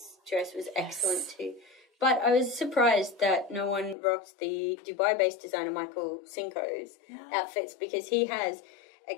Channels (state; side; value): drops out; right; at 4.0 s